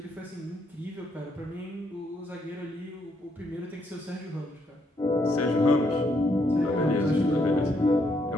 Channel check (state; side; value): normal; both; correlation 0.74